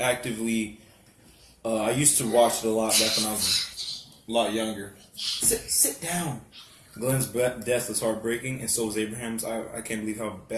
I used to watch it a lot back when I was a lot younger. Sit down. Glenn's death was heartbreaking, and so was Abraham's. I can't believe how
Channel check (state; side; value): identical; both; correlation 1.00